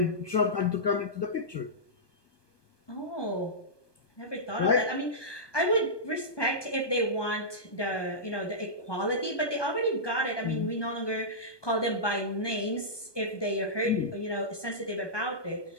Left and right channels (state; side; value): late; right; 1.2 ms